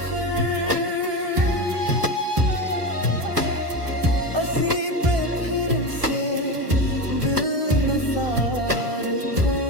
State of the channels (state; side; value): late; left; 1.3 ms